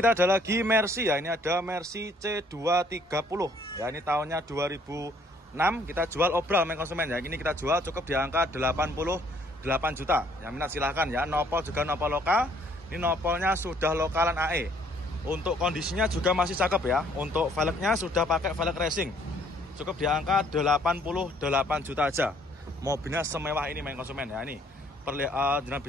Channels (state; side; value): normal; both; correlation 0.63